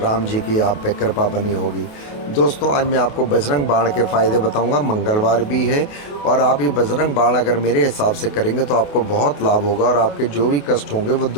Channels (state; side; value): late; right; 28 ms